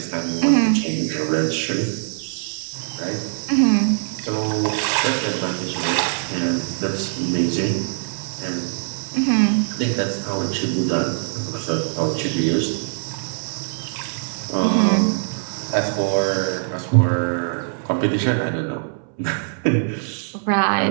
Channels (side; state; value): left; silent; 63 dB below the other